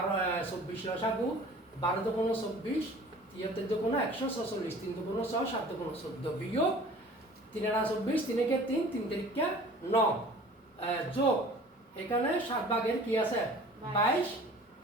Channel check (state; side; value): normal; both; correlation 0.46